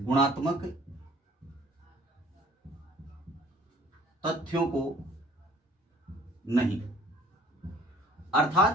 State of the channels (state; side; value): normal; both; correlation 0.54